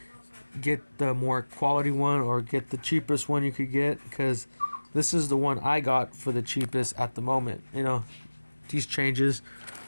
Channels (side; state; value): both; inverted; correlation -1.00